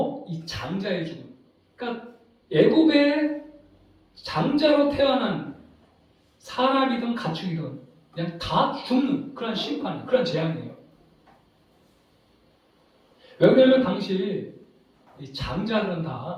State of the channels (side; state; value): both; identical; correlation 1.00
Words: 이 장자의 죽음. 그러니까 애굽의 장자로 태어난 사람이든 가축이든 그냥 다 죽는 그런 심판, 그런 재앙이에요. 왜냐하면 당시 이 장자들은